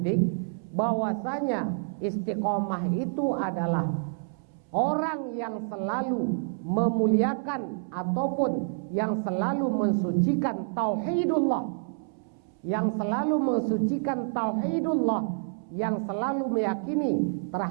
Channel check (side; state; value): left; silent; 59 dB below the other